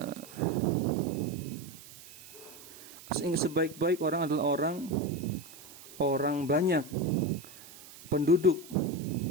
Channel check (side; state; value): right; noise; hiss, 18 dB below the sound